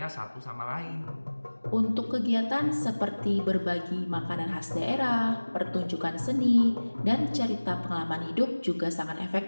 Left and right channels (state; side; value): inverted; both; correlation -1.00